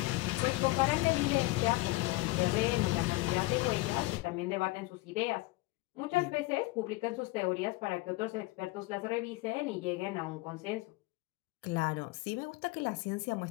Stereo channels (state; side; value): quieter; right; 21.1 dB